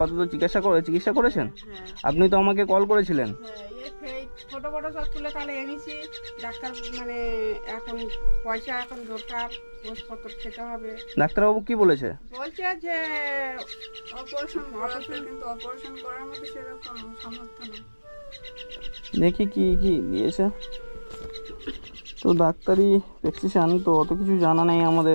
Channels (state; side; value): inverted; both; correlation -1.00